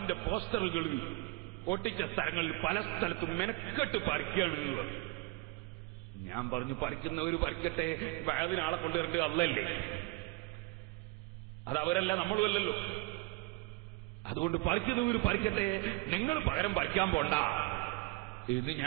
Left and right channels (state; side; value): quieter; left; 23.7 dB